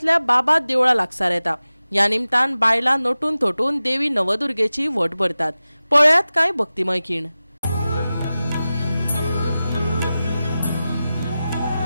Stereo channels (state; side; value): inverted; both; correlation -0.95